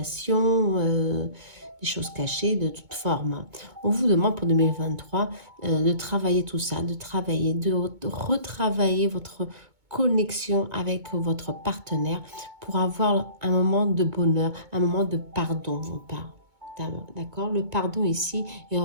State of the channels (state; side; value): late; left; 2.2 ms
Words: des choses cachées de toute forme. On vous demande pour 2023 de travailler tout ça, de retravailler votre connexion avec votre partenaire pour avoir un moment de bonheur, un moment de pardon, on parle. D'accord? Le pardon ici est un